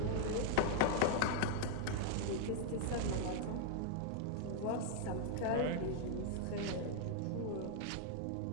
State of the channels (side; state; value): both; different; correlation -0.01